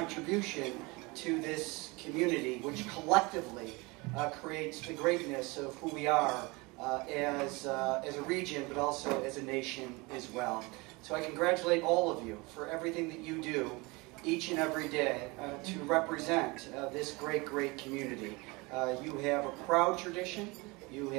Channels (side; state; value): left; quieter; 25.4 dB